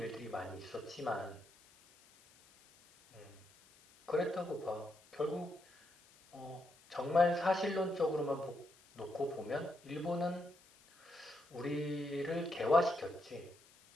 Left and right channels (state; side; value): noise; left; hiss, 26 dB below the sound